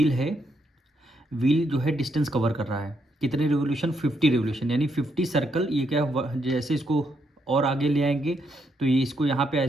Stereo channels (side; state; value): both; normal; correlation 0.77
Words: है, व्हील जो है डिस्टेंस कवर कर रहा है कितने रिवोल्यूशन 50 रिवोल्यूशन, यानी 50 सर्कल, ये क्या जैसे इसको और आगे ले आएंगे तो ये इसको यहाँ पे